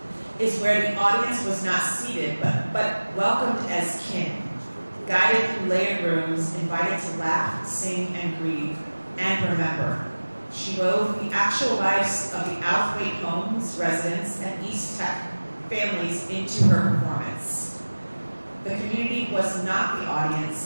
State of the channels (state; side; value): inverted; both; correlation -1.00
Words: is where the audience was not seated, but welcomed as kin, guided through layered rooms, invited to laugh, sing, and grieve, and remember. She wove the actual lives of the Outhwaite homes, residents, and East Tech families into her performance. The community was not the